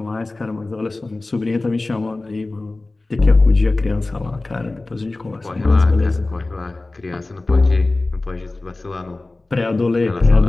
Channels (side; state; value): right; quieter; 3.1 dB